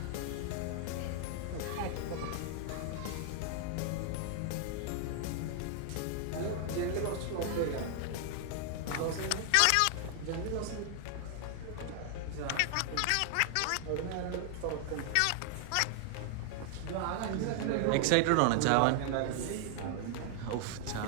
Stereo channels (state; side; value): different; both; correlation 0.00